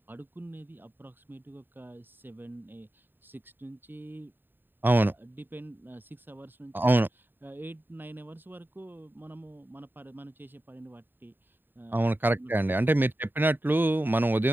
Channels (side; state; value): left; late; 0.094 ms